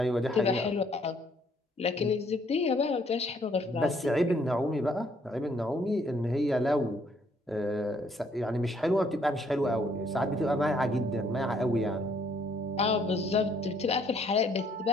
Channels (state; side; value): normal; both; correlation 0.66